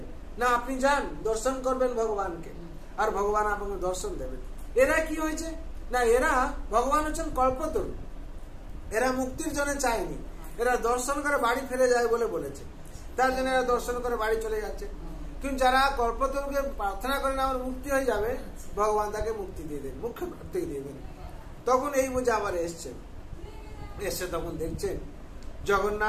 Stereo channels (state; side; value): identical; both; correlation 1.00